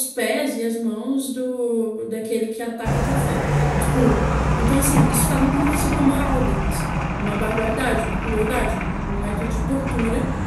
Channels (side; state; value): both; identical; correlation 1.00